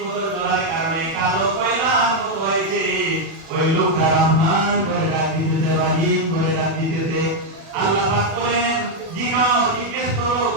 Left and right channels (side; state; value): left; late; 37 ms